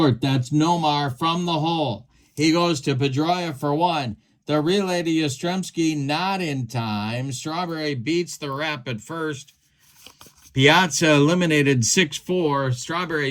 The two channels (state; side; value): identical; both; correlation 1.00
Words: That's Nomar from the hole. He goes to Pedroia for 1. The relay to Yastrzemski not in time. Strawberry beats the rep at first. Piazza eliminated 6-4.